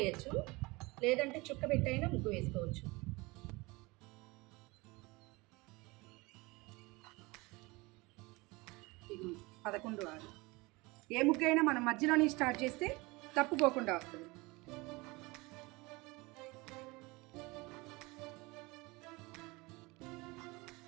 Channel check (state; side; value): quieter; left; 23.9 dB